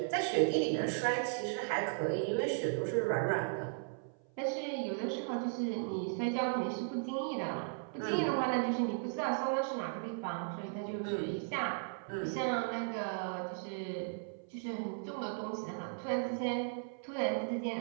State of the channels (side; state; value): left; silent; 54 dB below the other